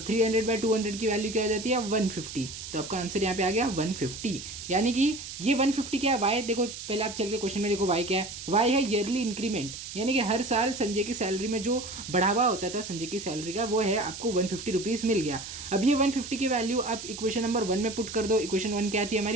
300/200 की वैल्यू क्या हो जाती है, 150। तो आपका आंसर यहाँ पे आ गया 150, यानी कि ये 150 क्या है, y देखो, पहले आप चल के क्वेश्चन में देखो y क्या है, y है ईयरली इंक्रीमेंट, यानी कि हर साल संजय की सैलरी में जो बढ़ावा होता था संजय की सैलरी का वो है आपको 150 रुपीज़ मिल गया। अब ये 150 की वैल्यू आप इक्वेशन नंबर 1 में पुट कर दो। इक्वेशन 1 क्या थी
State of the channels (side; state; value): right; noise; hiss, 10 dB below the sound